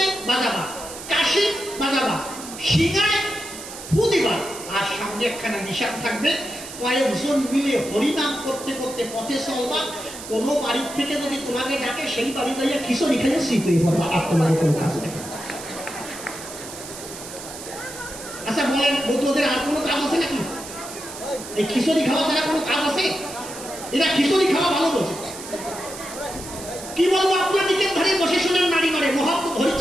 বাজাবা, কাশি বাজাবা, শিঙায় ফু দিবা, আর সামনে একখানা নিশান থাকবে। কয়েকজন মিলে হরিনাম করতে করতে পথে চলবা। কোনো বাড়ির থেকে যদি তোমাকে ডাকে সেই বাড়ি দাঁড়িয়ে খিচুড়ি খেলে শীত হয়ে পড়বা, আর তোমাদের কোনো কাজ নেই। আচ্ছা বলেন বৌদ্ধদের আর কোনো কাজ আছে নাকি? এই খিচুড়ি খাওয়া ছাড়া কোনো কাজ আছে? এরা খিচুড়ি খাওয়া ভালো বলছে। কি বলবো আপনার দিকে ধরে বসে শোনেন নারী মারে।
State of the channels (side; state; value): right; noise; hiss, 12 dB below the sound